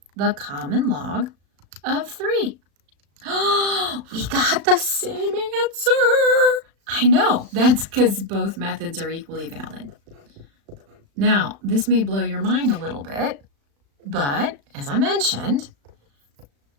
the common log of 3. Oh, we got the same answer. I know, that's because both methods are equally valid. Now, this may blow your mind a little bit, but as I mentioned,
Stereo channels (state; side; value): late; left; 36 ms